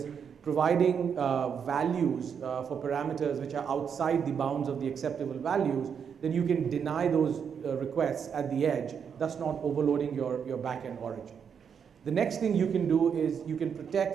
providing values for parameters which are outside the bounds of the acceptable values, then you can deny those requests at the edge, thus not overloading your backend origin. The next thing you can do is you can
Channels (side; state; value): left; quieter; 7.2 dB